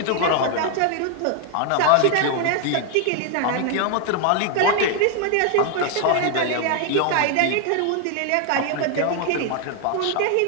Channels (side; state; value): both; different; correlation 0.00